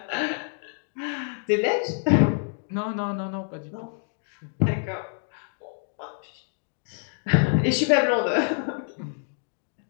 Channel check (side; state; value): right; silent; digital silence